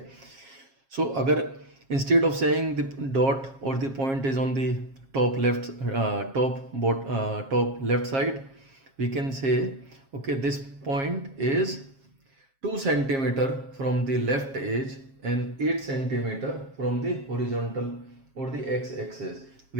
So agar instead of saying the dot or the point is on the top left top left side, we can say okay, this point is 2 centimeter from the left edge and 8 centimeter from the horizontal or the x-axis.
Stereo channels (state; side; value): late; left; 7.4 ms